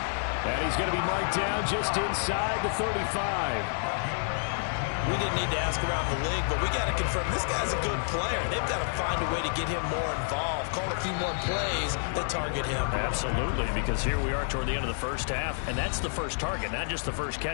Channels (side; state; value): right; silent; digital silence